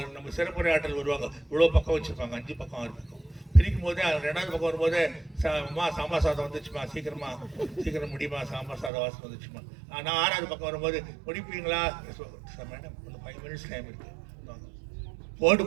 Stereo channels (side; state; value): left; drops out; at 8.9 s